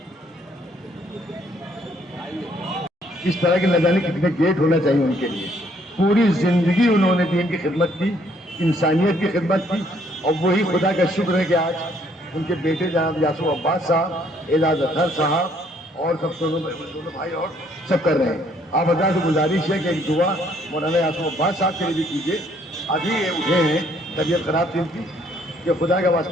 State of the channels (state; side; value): normal; both; correlation 0.66